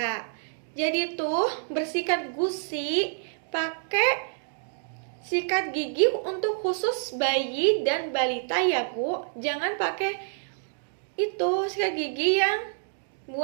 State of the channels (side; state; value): left; silent; digital silence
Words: Jadi tuh bersikat gusi pakai sikat gigi untuk khusus bayi dan balita ya Bu. Jangan pakai itu sikat gigi yang